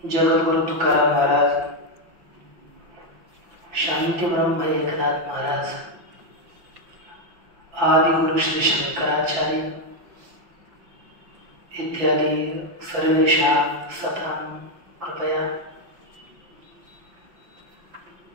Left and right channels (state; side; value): late; left; 5.7 ms